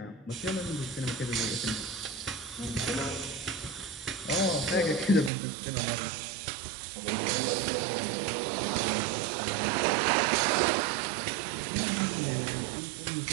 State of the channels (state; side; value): drops out; left; at 5.3 s